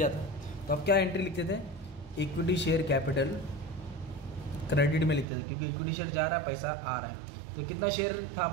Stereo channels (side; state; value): left; drops out; at 5.2 s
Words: था। तो अब क्या एंट्री लिखते थे, इक्विटी शेयर कैपिटल क्रेडिट में लिखते थे, क्योंकि इक्विटी शेयर जा रहा है पैसा आ रहा है। तो कितना शेयर था